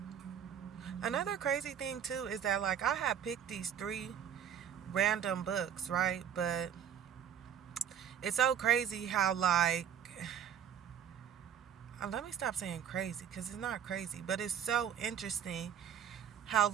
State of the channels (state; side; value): quieter; left; 9.0 dB